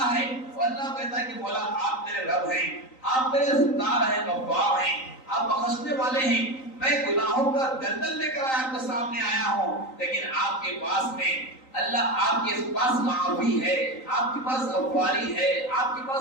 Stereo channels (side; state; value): right; late; 3.9 ms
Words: ہے، وہ اللہ کہتا ہے کہ مولا آپ میرے رب ہیں، آپ میرے ستار ہیں، غفار ہیں، آپ بخشنے والے ہیں۔ میں گناہوں کا دلدل لے کر آپ کے سامنے آیا ہوں، لیکن آپ کے پاس میں اللہ، آپ کے پاس معافی ہے، آپ کے پاس غفاری ہے، آپ کے پاس